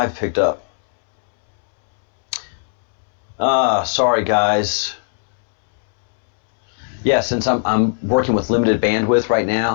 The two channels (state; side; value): silent; right; 67 dB below the other